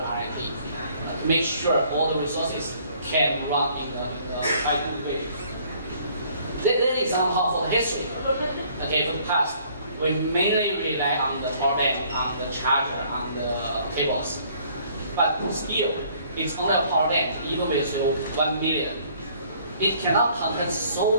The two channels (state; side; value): inverted; both; correlation -0.60